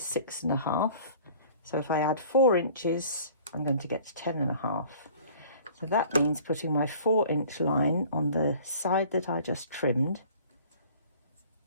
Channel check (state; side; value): inverted; both; correlation -0.50